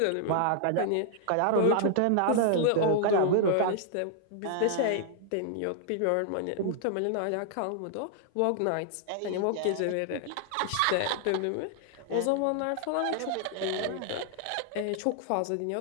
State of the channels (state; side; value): different; both; correlation -0.01